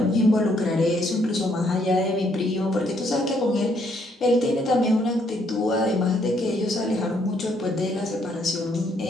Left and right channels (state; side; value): normal; both; correlation 0.70